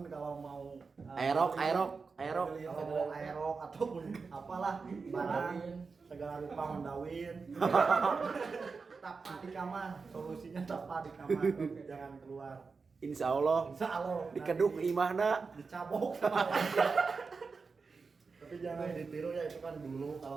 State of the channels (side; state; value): left; quieter; 4.7 dB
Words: kalau mau Aerok. kalau mau aerok ataupun apalah barang segala rupa mendawin. Tapa di kamar, solusinya tapa di kamar, jangan keluar. Insya Allah Insya Allah dikeduk nanti imahna. dicabok sama tapi jangan ditiru ya, itu kan dulu.